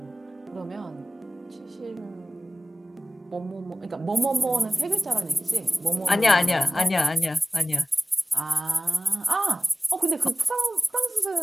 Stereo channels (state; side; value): normal; both; correlation 0.97